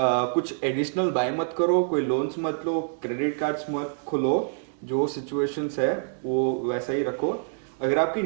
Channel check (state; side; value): silent; left; 61 dB below the other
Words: एडिशनल बाय मत करो, कोई लोन्स मत लो, क्रेडिट कार्ड्स मत खुलो, जो सिचुएशंस है वो वैसा ही रखो। अगर आपकी